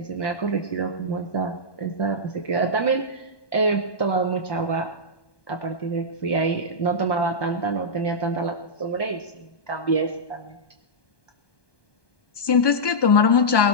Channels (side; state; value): right; late; 1.2 ms